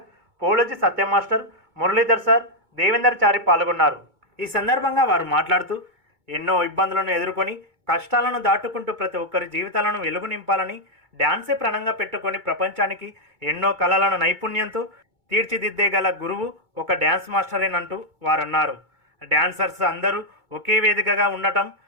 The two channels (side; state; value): left; late; 2.2 ms